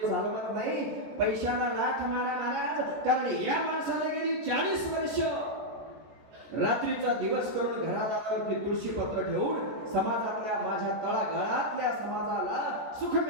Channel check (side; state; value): left; late; 14 ms